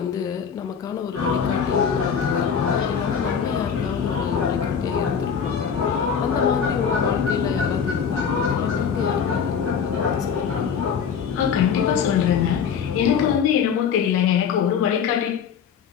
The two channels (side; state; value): right; quieter; 7.1 dB